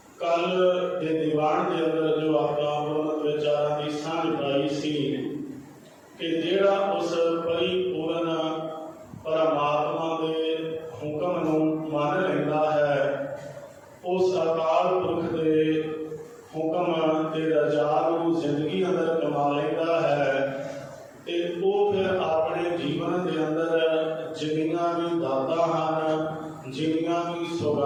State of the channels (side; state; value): both; identical; correlation 1.00